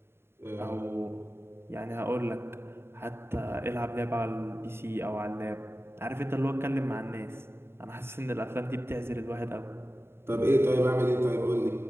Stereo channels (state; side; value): late; left; 0.11 ms